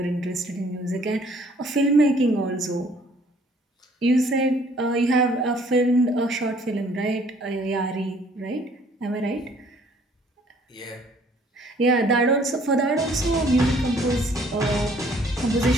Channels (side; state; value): both; normal; correlation 0.59